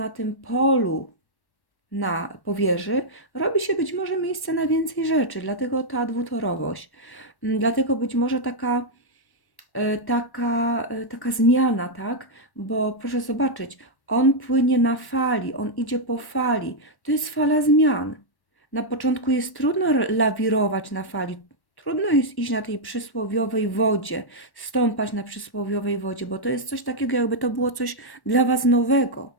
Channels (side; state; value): right; late; 1.1 ms